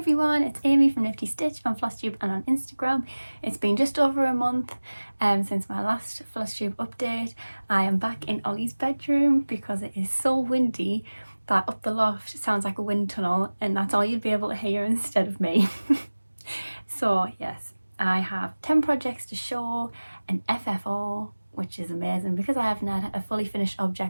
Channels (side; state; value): both; inverted; correlation -1.00